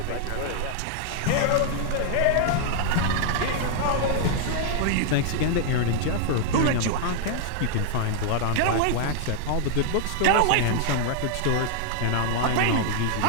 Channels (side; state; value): both; different; correlation 0.00